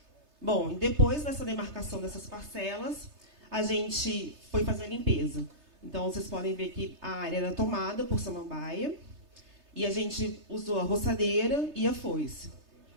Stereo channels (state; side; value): late; left; 3.3 ms